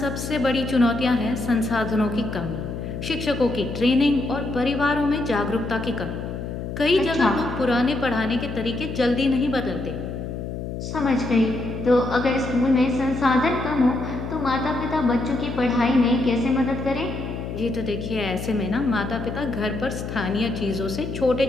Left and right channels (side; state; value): left; noise; hum, 6 dB below the sound